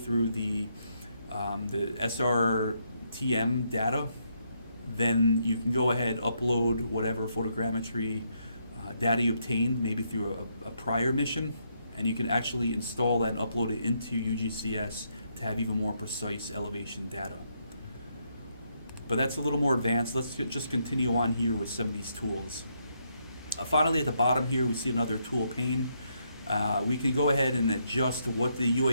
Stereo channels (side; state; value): both; inverted; correlation -0.77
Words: the SRTM data, then you can go ahead, upload whatever photogrammetry data you obtained, maybe through a prior mission, and you can actually install that and upload it into UgCS to have even more precise elevation data. But that's a little more advanced. Let's just continue on here with some of these tools. Finally, at the bottom here, we see another tool pane. We can go ahead and adjust what the